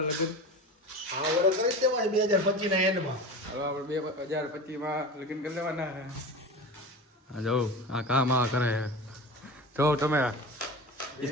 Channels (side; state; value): both; normal; correlation 0.31